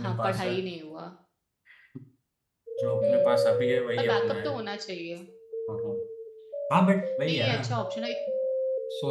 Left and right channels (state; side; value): identical; both; correlation 1.00